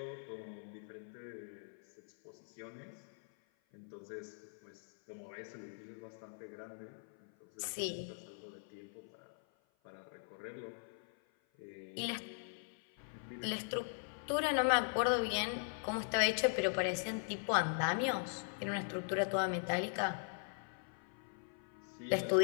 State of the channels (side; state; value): right; silent; 51 dB below the other